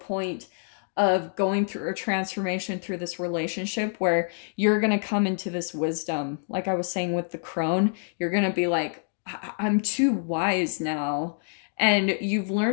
of going through a transformation through this relationship where you're going to come into this wisdom. Like I was saying with the crone, you're going to be like, I'm too wise now. And you've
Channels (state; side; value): silent; right; digital silence